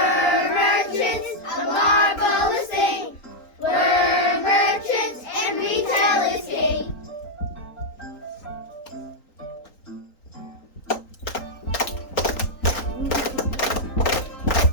merchants, a marvelous thing. We're merchants and retail is king.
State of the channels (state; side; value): late; right; 3.9 ms